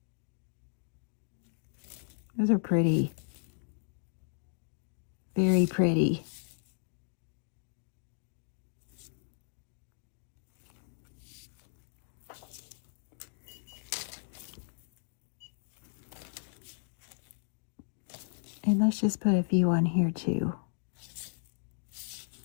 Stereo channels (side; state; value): right; silent; digital silence